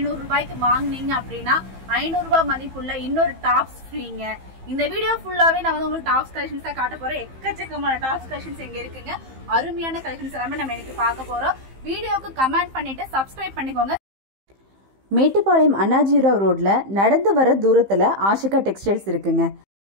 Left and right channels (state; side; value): late; left; 15 ms